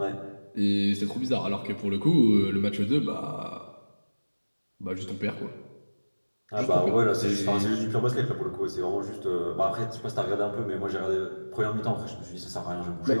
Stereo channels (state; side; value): inverted; both; correlation -1.00